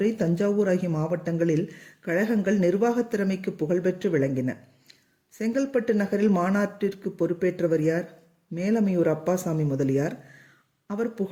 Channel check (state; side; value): identical; both; correlation 1.00